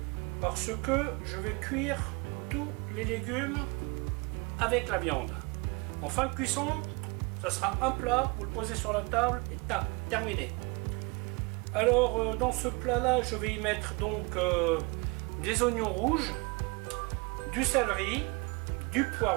Parce que je vais cuire tous les légumes avec la viande. En fin de cuisson, ça sera un plat, vous le posez sur la table et tac, terminé. Alors dans ce plat là, je vais y mettre donc des oignons rouges, du céleri, du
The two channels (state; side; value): quieter; left; 28.9 dB